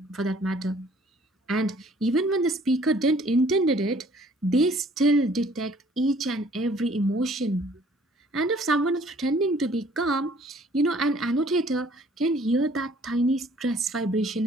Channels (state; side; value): normal; both; correlation 0.58